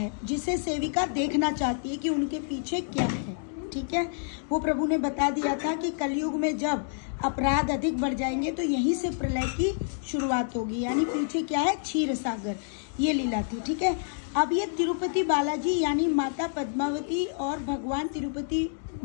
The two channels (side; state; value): right; silent; digital silence